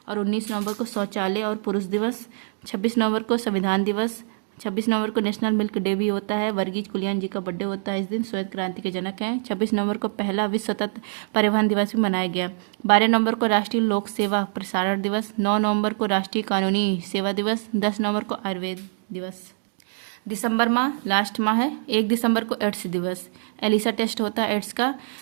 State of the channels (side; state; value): left; silent; digital silence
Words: और 19 नवंबर को शौचालय और पुरुष दिवस, 26 नवंबर को संविधान दिवस, 26 नवंबर को नेशनल मिल्क डे भी होता है। वर्गीज कुरियन जी का बर्थडे होता है इस दिन, श्वेत क्रांति के जनक हैं। 26 नवंबर को पहला विश्व सतत परिवहन दिवस भी मनाया गया। 12 नवंबर को राष्ट्रीय लोक सेवा प्रसारण दिवस, 9 नवंबर को राष्ट्रीय कानूनी सेवा दिवस, 10 नवंबर को आयुर्वेद दिवस। दिसंबर माह लास्ट माह है। 1 दिसंबर को एड्स दिवस, एलिसा टेस्ट होता है एड्स का।